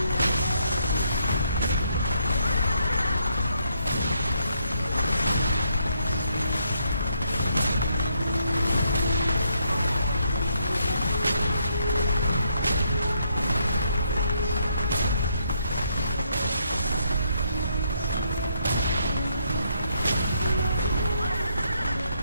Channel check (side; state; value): both; inverted; correlation -0.74